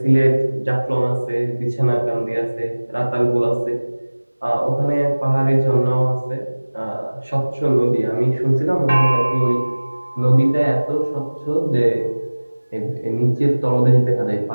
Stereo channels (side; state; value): both; inverted; correlation -1.00